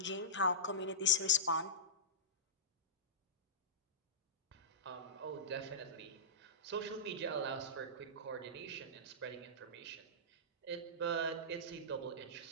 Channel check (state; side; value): normal; both; correlation -0.17